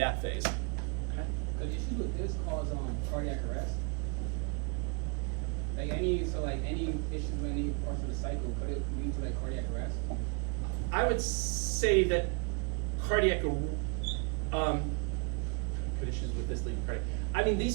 phase. The issue with this cause cardiac arrest. Like any issues with any parts of the cycle, could it lead to cardiac arrest? I would say that cardiac could issues with this lead cardiac. I mean,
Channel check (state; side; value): quieter; left; 34.4 dB